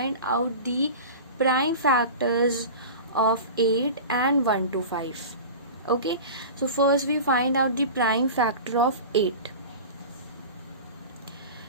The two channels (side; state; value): both; inverted; correlation -0.33